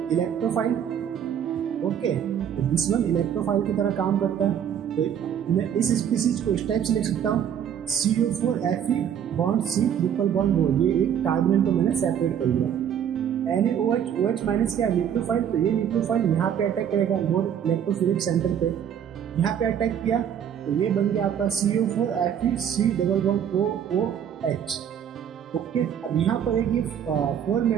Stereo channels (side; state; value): left; quieter; 8.9 dB